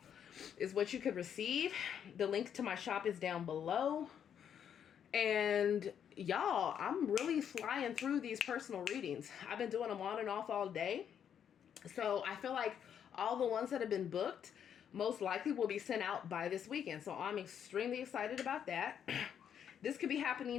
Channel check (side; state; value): right; quieter; 8.6 dB